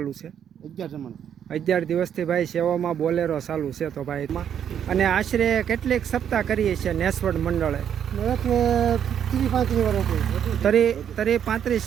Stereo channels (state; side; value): quieter; left; 8.9 dB